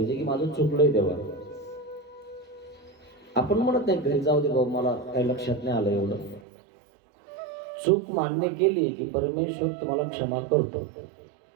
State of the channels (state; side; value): drops out; left; at 6.4 s